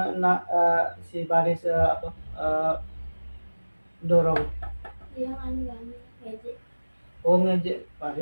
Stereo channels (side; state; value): both; inverted; correlation -1.00